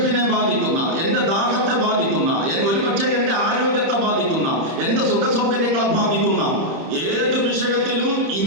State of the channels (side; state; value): left; late; 30 ms